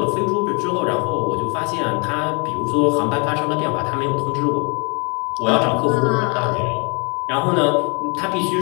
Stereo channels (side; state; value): right; quieter; 33.7 dB